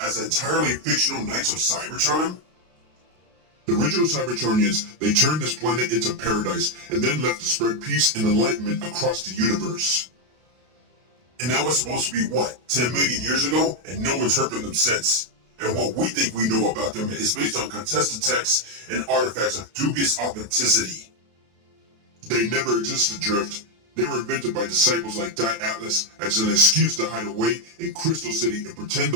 entirely fictional Knights of Cybertron? The original Cybertronians, they turned this planet into paradise and then left to spread peace and enlightenment across the universe. And that was supposed to be what, 10 million years ago? And no one's heard from them since. And what we think we know about them is based on contested texts and artifacts of dubious authenticity. They never existed, Drift. They were invented by disciples like Die Atlas as an excuse to hide away in Crystal City and pretend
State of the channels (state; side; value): late; left; 32 ms